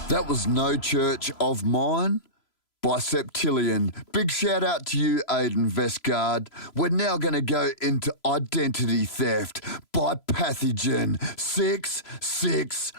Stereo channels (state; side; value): late; right; 3.0 ms